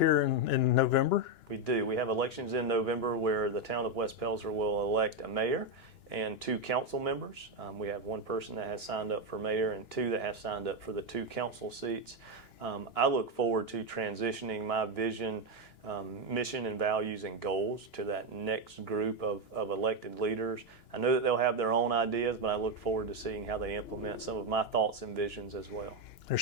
in November. We do. We have elections in November where the town of West Pelzer will elect a mayor and 2 council members. We have 1 person that has signed up for mayor and 2 that have signed up for the 2 council seats. I look forward to transitioning my vision, mission and values and goals to that next group of elected leaders. I know that they'll have their own ideas, but I look forward to seeing how they implement some of my thoughts and visions as well.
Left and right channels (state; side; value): late; right; 2.9 ms